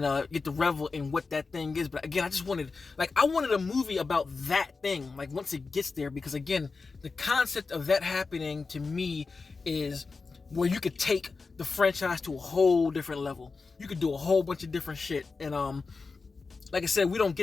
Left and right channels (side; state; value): right; quieter; 4.3 dB